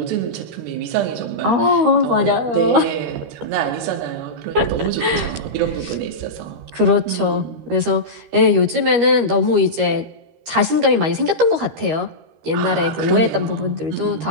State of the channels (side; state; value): left; late; 13 ms